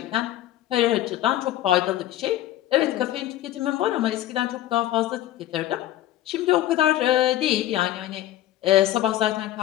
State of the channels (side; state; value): right; quieter; 13.8 dB